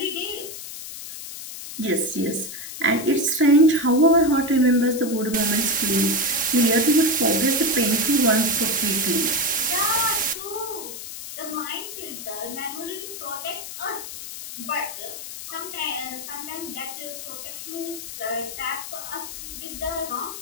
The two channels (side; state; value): left; noise; hiss, 10 dB below the sound